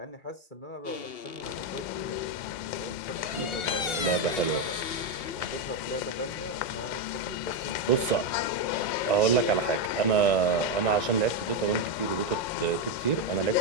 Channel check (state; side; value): late; right; 2.8 ms